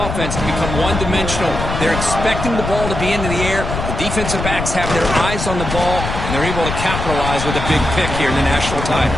to become one-dimensional. They're expecting the ball to be into the air. The defensive backs have their eyes on the ball, and they're able to capitalize with a big pick here in the national title.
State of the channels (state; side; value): noise; left; rumble, 5 dB below the sound